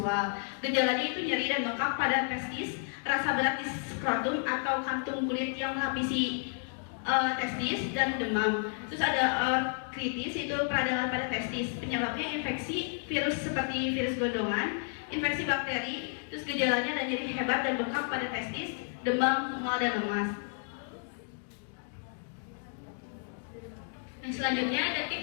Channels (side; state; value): right; silent; 57 dB below the other